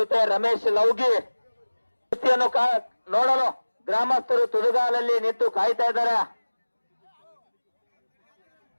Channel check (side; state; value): both; inverted; correlation -1.00